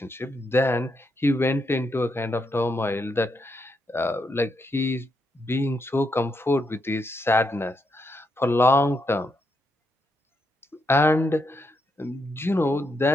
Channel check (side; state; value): both; normal; correlation 0.80